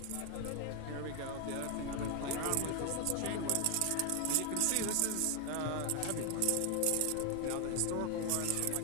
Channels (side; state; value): both; different; correlation 0.00